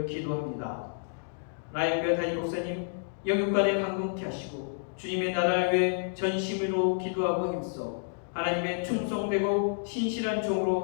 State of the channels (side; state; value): right; silent; digital silence